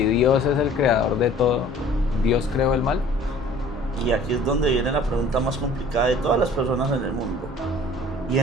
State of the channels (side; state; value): both; normal; correlation 0.50